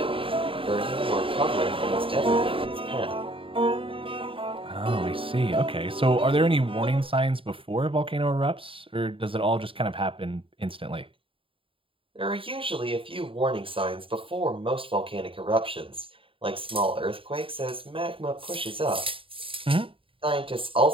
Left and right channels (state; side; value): late; left; 0.26 ms